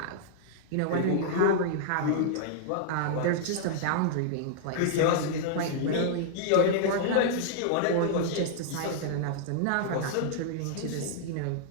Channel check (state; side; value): different; both; correlation -0.01